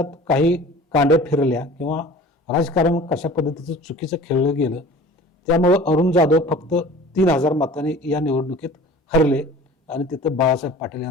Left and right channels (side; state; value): both; normal; correlation 0.43